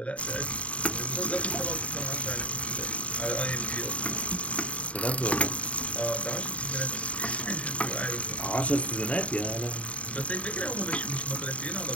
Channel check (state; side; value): late; right; 0.065 ms